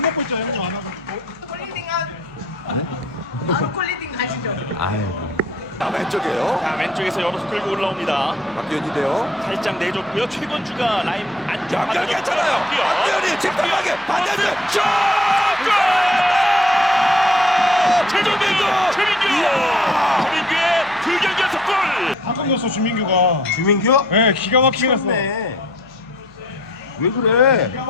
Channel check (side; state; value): left; noise; hum, 28 dB below the sound